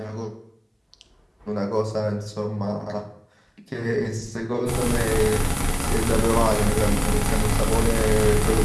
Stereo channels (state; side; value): identical; both; correlation 1.00